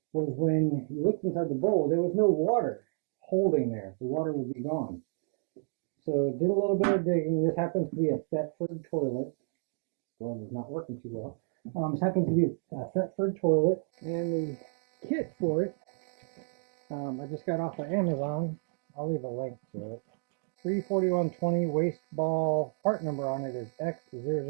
was when you looked inside the bowl, there was no water holding there. The water would be gone. So did a little bit of digging. This happens to be a Thetford toilet. Glove is not working too well. This happens to be a Thetford toilet, and the kit for it I just got off of Amazon. I'll leave a link to it. 34120 waste ball. Part number on it is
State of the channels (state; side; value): silent; left; 57 dB below the other